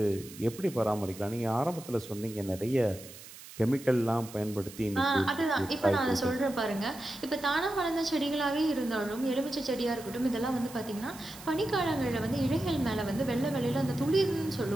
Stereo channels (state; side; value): noise; right; hiss, 16 dB below the sound